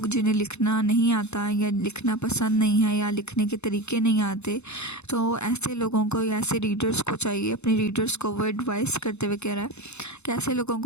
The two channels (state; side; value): late; right; 0.81 ms